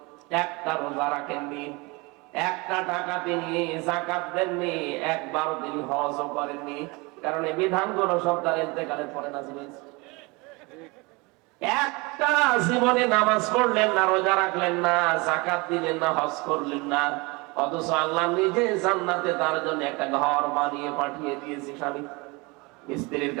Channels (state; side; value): quieter; left; 26.3 dB